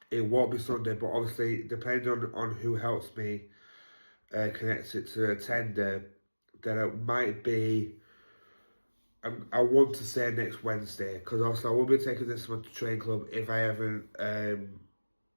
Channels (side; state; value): both; inverted; correlation -1.00